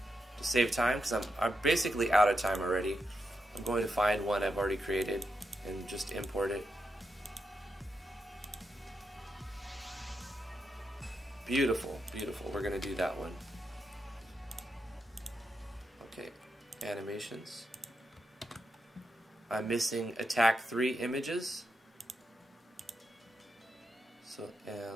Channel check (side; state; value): both; normal; correlation 0.85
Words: to save time, because I'm basically out of time already. I'm going to find one I've already created and just import it. Beautiful, beautiful. We're going to do that one. Okay, animations. I'm missing attack 3 images. So